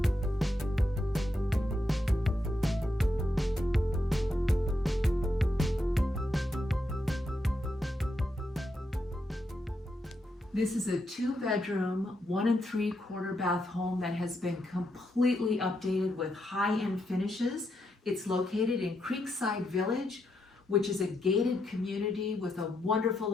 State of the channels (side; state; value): both; normal; correlation 0.82